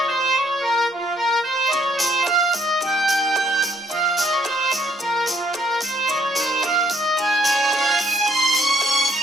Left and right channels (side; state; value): both; normal; correlation 0.67